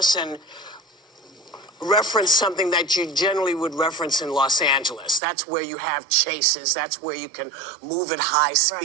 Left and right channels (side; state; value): left; drops out; at 5.2 s